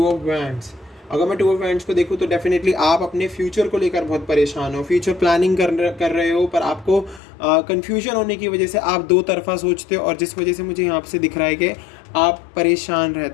ऑफ वैंड्स। अगर मैं 2 ऑफ वैंड्स को देखूँ तो डेफिनेटली आप अपने फ्यूचर को लेकर बहुत परेशान हो, फ्यूचर प्लानिंग कर रहे हो, पर आपको कन्फ्यूजन होने की वजह से आप 2 तरफा सोचते हो, और जिस वजह से मुझे यहाँ से दिख रहा है कि आप परेशान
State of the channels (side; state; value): right; drops out; at 7.2 s